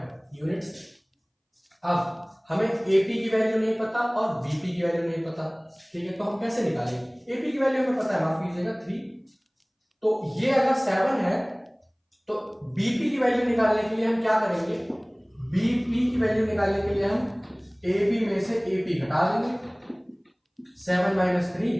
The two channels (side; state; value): both; identical; correlation 1.00